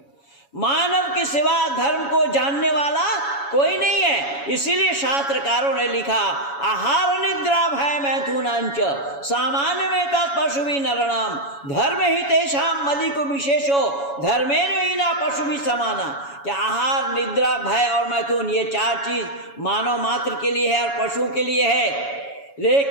मानव के सिवा धर्म को जानने वाला कोई नहीं है। इसीलिए शास्त्रकारों ने लिखा, आहार निद्रा भय मैथुनांच सामान्य में पशु भी नरणाम धर्म ही तेषाम मदि को विशेषो धर्मेण ही ना पशु भी समाना। क्या आहार, निद्रा, भय और मैथुन, ये चार चीज मानव मात्र के लिए है और पशुओं के लिए है,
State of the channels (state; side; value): late; right; 7.1 ms